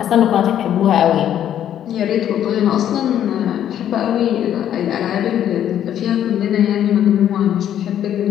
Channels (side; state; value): right; quieter; 10.5 dB